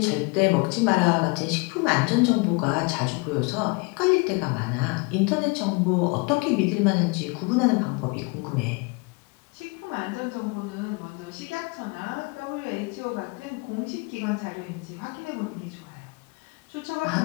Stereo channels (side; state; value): right; quieter; 28.9 dB